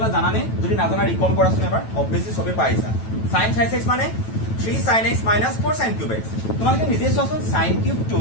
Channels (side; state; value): right; late; 9.1 ms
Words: জানানে যদি নাজানা ৰিকল কৰাচোন এবাৰ অবভিয়াসলি সবে পাইছা sin twice x মানে 3 sin x minus 4 sin cube x তোমালোকে নিজে চোৱাচোন sin cube টু